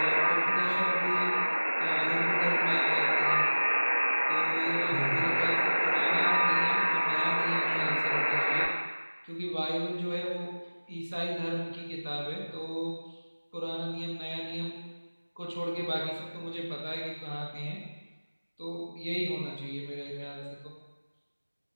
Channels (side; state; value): both; inverted; correlation -1.00